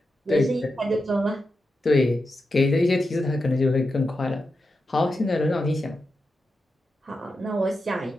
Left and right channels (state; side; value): normal; both; correlation 0.89